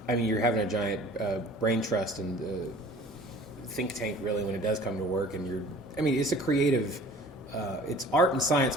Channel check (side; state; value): both; normal; correlation 0.47